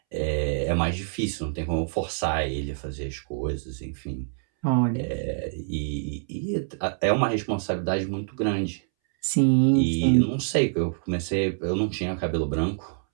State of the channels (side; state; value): left; silent; 61 dB below the other